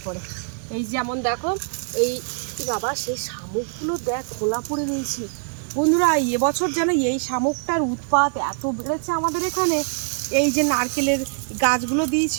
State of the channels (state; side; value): silent; left; 63 dB below the other